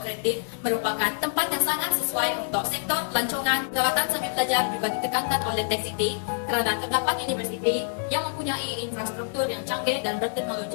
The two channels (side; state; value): right; silent; digital silence